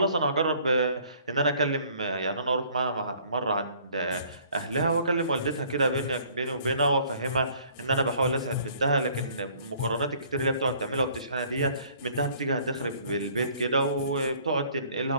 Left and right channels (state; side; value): inverted; both; correlation -0.58